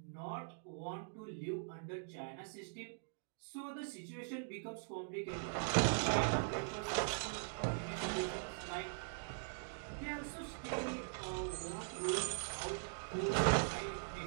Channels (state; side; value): silent; left; digital silence